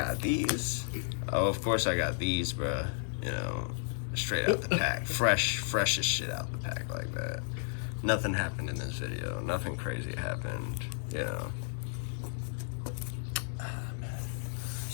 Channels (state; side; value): silent; right; digital silence